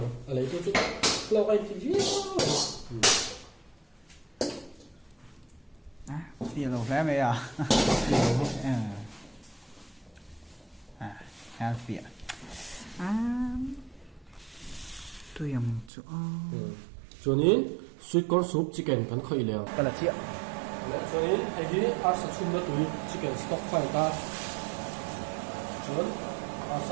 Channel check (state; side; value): drops out; left; at 15.9 s